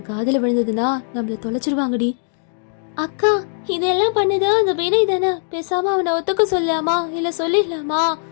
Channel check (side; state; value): right; silent; digital silence